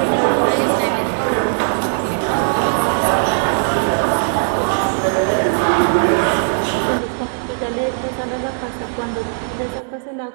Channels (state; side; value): silent; left; digital silence